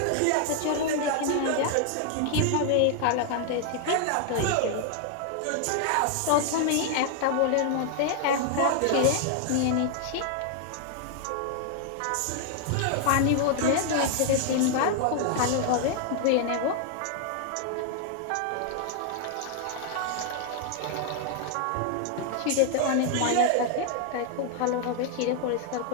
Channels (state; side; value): different; both; correlation 0.00